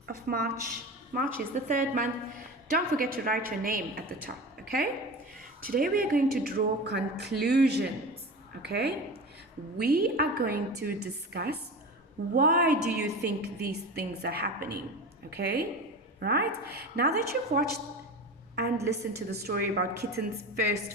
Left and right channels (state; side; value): normal; both; correlation 0.30